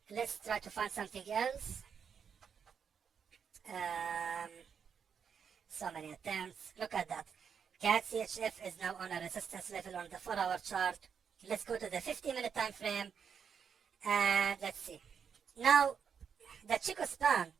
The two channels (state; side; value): quieter; left; 7.0 dB